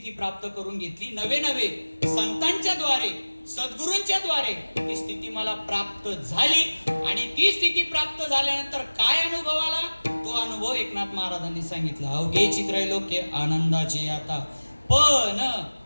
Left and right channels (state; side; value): inverted; both; correlation -1.00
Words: प्राप्त करून घेतली. नवे संतांच्या द्वारे, सद्गुरूंच्या द्वारे ती स्थिती मला प्राप्त झाली. आणि ती स्थिती प्राप्त झाल्यानंतर काय अनुभव आला, तो अनुभव एकनाथ महाराजांनी सांगितला. अवघेची त्रैलोक्य आनंदाची आता. पण